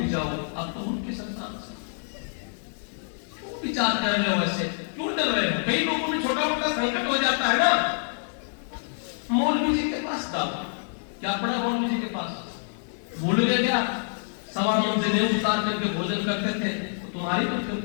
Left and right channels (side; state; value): right; silent; digital silence